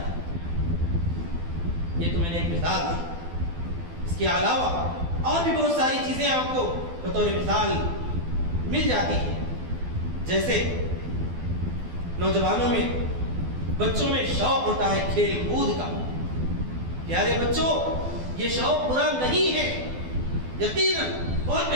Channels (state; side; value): late; left; 12 ms